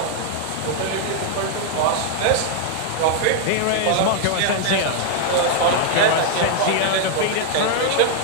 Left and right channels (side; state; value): both; different; correlation 0.00